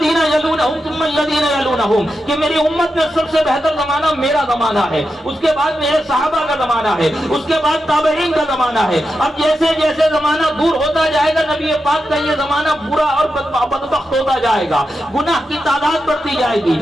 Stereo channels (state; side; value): normal; both; correlation 0.88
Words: یلونہم ثم الذین یلونہم کہ میری امت میں سب سے بہتر زمانہ میرا زمانہ ہے. اس کے بعد میرے صحابہ کا زمانہ ہے, اس کے بعد تابعین کا زمانہ ہے. اب جیسے جیسے زمانہ دور ہوتا جائے گا نبی پاک کا یہ زمانہ برا اور بدبخت ہوتا جائے گا, گناہ کی تعداد بڑھتی جائے گی.